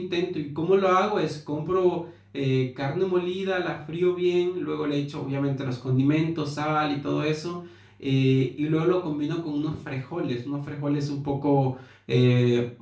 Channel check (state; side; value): identical; both; correlation 1.00